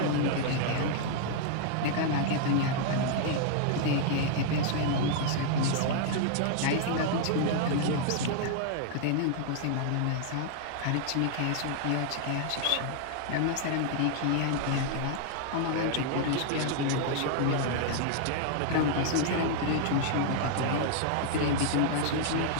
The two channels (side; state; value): both; different; correlation 0.00